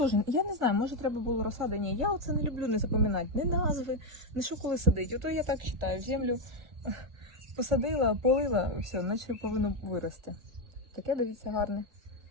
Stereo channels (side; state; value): left; late; 1.6 ms